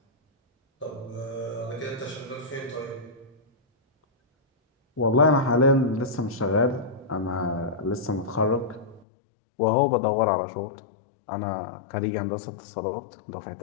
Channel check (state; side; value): drops out; right; at 9.1 s